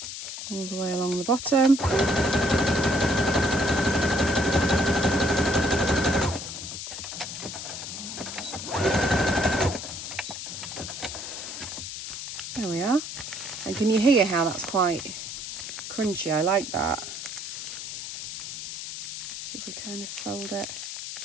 all the way along the bottom. There we are. And can you hear how that's quite crunchy? I like that. So if we kind of fold it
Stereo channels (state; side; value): noise; left; hiss, 8 dB below the sound